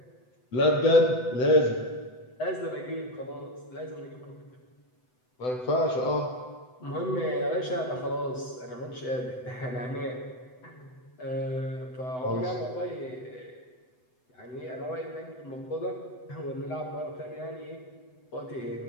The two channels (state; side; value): late; right; 7.9 ms